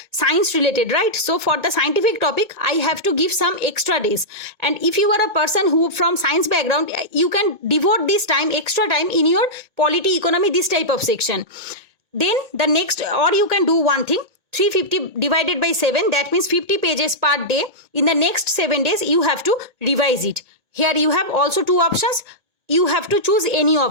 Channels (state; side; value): late; left; 2.2 ms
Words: science related, right? So for the scientific topic I have to give some extra days, and if you are a person who from science background, you can devote this extra time in your polity, economy, this type of section. Then the next, or you can do one thing, 350 divided by 7, that means 50 pages per day. In the next 7 days you have to revise it. Here you have also 2 options, you have to choose any